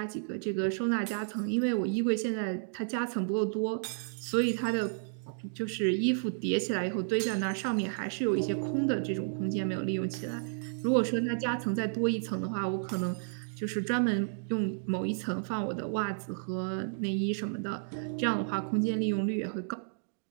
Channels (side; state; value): left; silent; digital silence